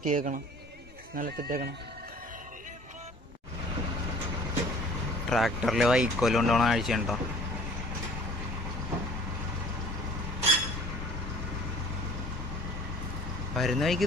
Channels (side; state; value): both; normal; correlation 0.50